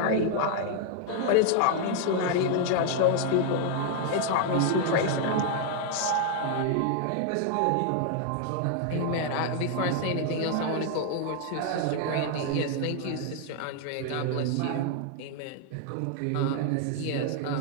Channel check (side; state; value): both; different; correlation 0.00